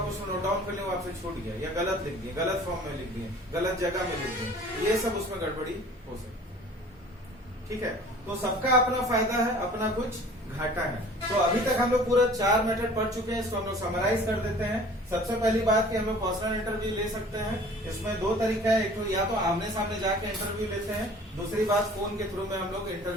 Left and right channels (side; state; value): both; normal; correlation 0.47